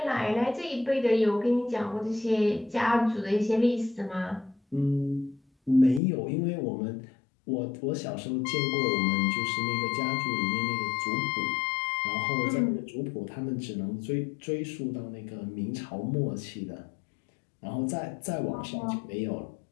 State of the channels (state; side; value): drops out; right; at 6.0 s